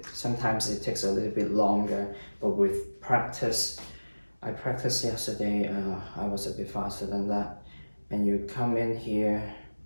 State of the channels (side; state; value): both; inverted; correlation -1.00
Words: Sometimes it takes a little bit longer, but with practice, I practiced yesterday, I was a bit faster than that. And you come in here,